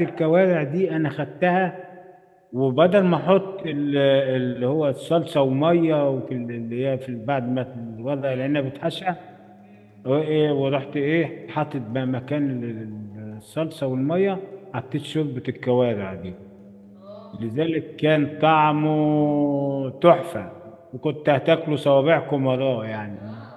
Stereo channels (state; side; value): identical; both; correlation 1.00